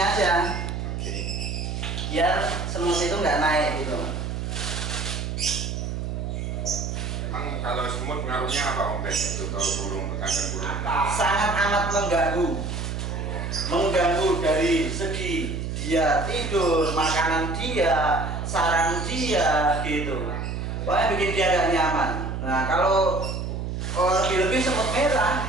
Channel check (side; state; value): right; noise; hum, 4 dB below the sound